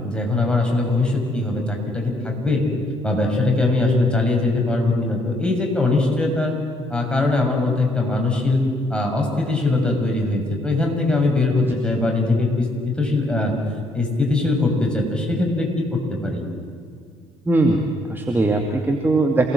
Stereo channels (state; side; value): normal; both; correlation 0.70